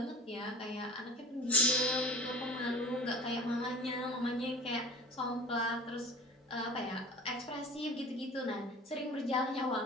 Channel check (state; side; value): normal; both; correlation 0.37